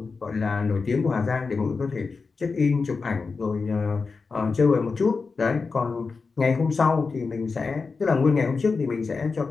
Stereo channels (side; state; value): right; quieter; 4.6 dB